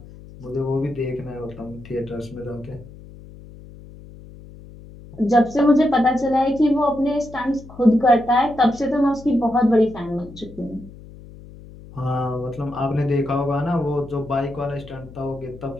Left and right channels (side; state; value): left; noise; hum, 18 dB below the sound